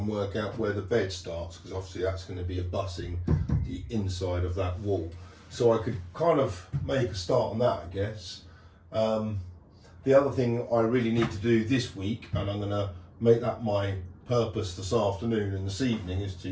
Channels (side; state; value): both; identical; correlation 1.00